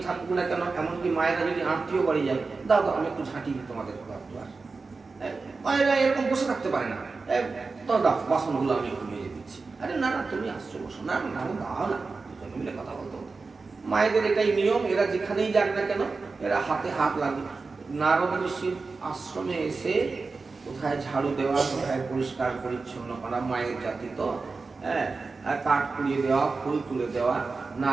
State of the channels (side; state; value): left; quieter; 4.1 dB